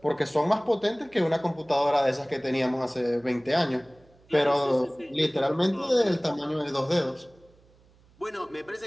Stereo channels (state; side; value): noise; right; hum, 30 dB below the sound